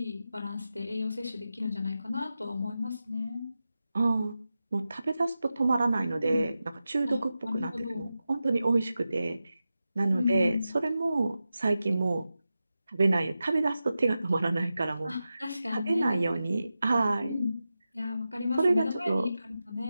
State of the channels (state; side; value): inverted; both; correlation -0.92